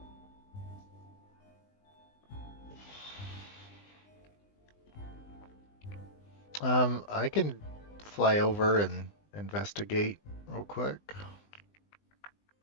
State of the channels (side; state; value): right; late; 20 ms